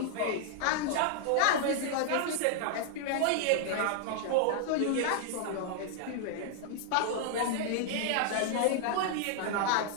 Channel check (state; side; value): different; both; correlation 0.00